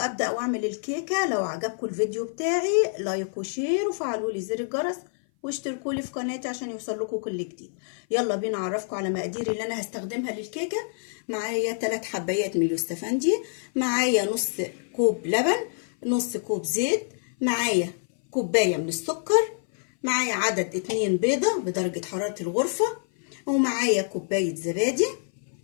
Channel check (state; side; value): silent; right; 57 dB below the other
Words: واعمل الكيكة، لو عجبكم الفيديو بتاعي لايك وشير وفعلوا لي زر الجرس واشتركوا لي في قناتي عشان يوصل لكم كل جديد. يلا بينا اعرفكم على مقاديري اللي انا هستخدمها للكيكة. معايا 3 حبايات من اليوستفندي، معايا نص كوب لبن، نص كوب زيت، معايا كوباية من السكر، معايا عدد 2 بيضة بدرجة حرارة الغرفة، ومعايا كوباية زبادي،